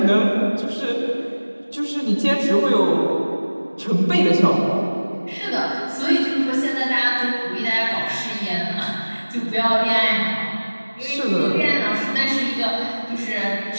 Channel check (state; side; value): inverted; both; correlation -1.00